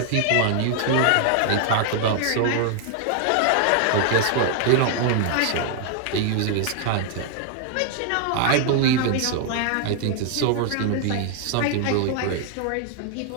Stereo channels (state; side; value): different; both; correlation 0.00